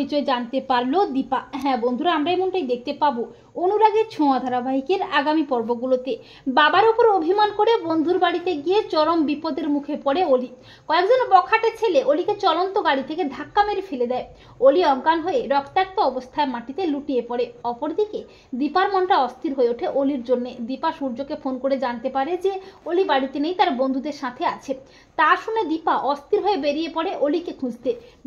জানতে পারলো দীপা। হ্যাঁ বন্ধুরা, আমরা এমনটাই দেখতে পাবো অনুরাগের ছোঁয়া ধারাবাহিকের আগামী পর্বগুলোতে। বাবার উপর অভিমান করে বন্ধুর বাড়িতে গিয়ে চরম বিপদের মুখে পড়ে অলি। কয়েকজন বখাটে ছেলে অলিকে চলন্ত গাড়ি থেকে ধাক্কা মেরে ফেলে দেয়। অলি অজ্ঞান হয়ে রক্তাক্ত অবস্থায় মাটিতে লুটিয়ে পড়ে। অপরদিকে দীপার মনটা অস্থির হয়ে ওঠে অলির জন্য। দীপা সূর্যকে ফোন করে জানতে পারে যে অলি বাড়িতে নেই, তার বন্ধুদের সাথে আছে। তা শুনে দীপা অস্থির হয়ে বেরিয়ে পড়ে অলিকে খুঁজতে।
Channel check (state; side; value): identical; both; correlation 1.00